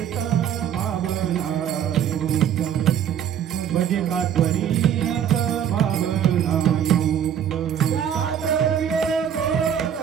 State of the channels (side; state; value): left; quieter; 9.2 dB